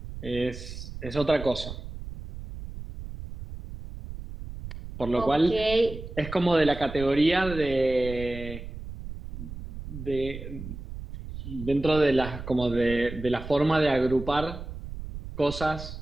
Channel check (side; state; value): right; noise; rumble, 10 dB below the sound